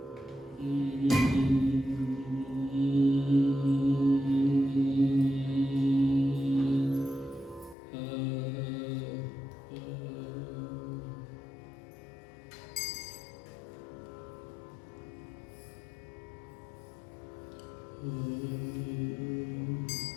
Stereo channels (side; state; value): right; drops out; at 7.8 s